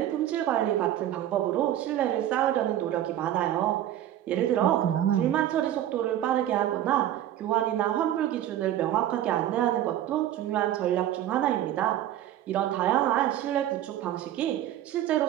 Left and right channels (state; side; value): quieter; left; 12.2 dB